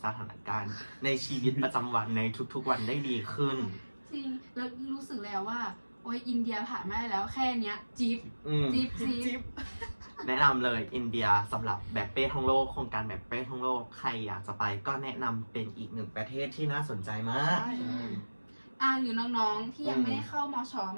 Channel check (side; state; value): both; inverted; correlation -1.00